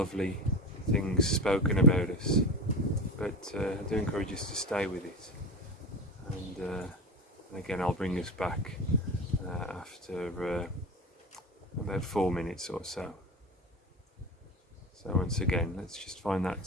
things spoken about us, but I do encourage us to stay with it. And again, I'll bring us back after about 4 minutes or so. So once again, let's just find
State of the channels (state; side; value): normal; both; correlation 0.26